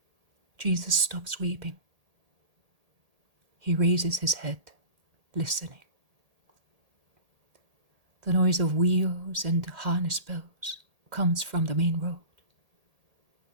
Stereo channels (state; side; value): late; left; 1.8 ms